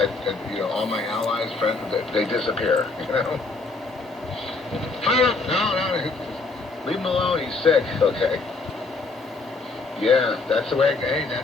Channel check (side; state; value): right; quieter; 3.7 dB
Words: all my allies, friends, they disappear. No, leave him alone. He's sick. Okay. Yeah, that's the way. Hey,